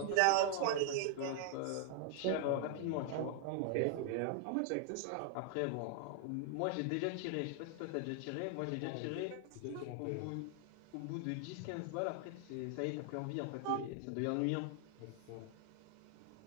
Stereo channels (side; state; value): both; different; correlation 0.00